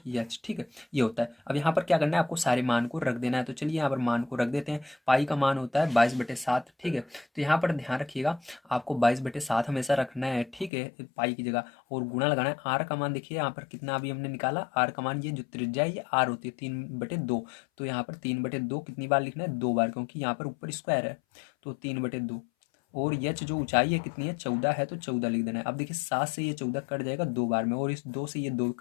एच। ठीक है, ये होता है। अब यहाँ पर क्या करना है, आपको सारे मान को रख देना है। तो चलिए यहाँ पर मान को रख देते हैं। पाई का मान होता है 22/7। ठीक है, तो यहाँ पर ध्यान रखिएगा, आपको 22/7 हमेशा रखना है। ठीक है, पाई की जगह, और गुणा लगाना है। आर का मान देखिए यहाँ पर कितना अभी हमने निकाला, आर का मान, ये जो त्रिज्या है ये आर होती है 3/2। तो यहाँ पर 3/2 कितनी बार लिखना है, 2 बार, क्योंकि यहाँ पर ऊपर स्क्वायर है। तो 3/2, और यच जो ऊंचाई है कितनी है, 14 है, तो 14 लिख देना है। अब देखिए 7 से ये 14 कट जाएगा 2 बार में, और इस 2 से ये 2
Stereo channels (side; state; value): right; drops out; at 10.7 s